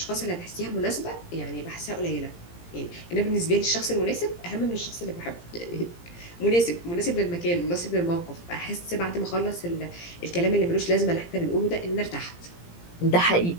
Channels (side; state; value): right; late; 17 ms